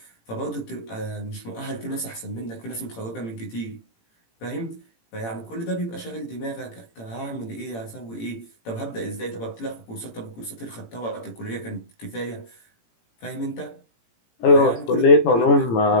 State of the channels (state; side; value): late; right; 18 ms